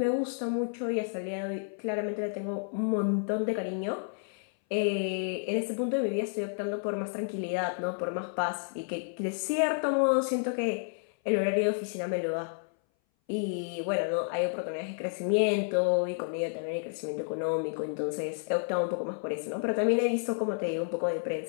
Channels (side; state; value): right; silent; 57 dB below the other